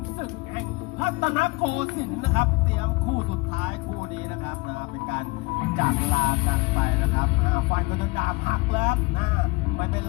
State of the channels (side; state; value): right; quieter; 25.0 dB